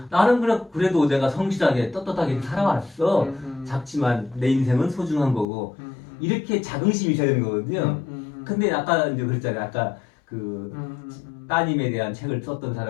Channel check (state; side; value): drops out; right; at 5.5 s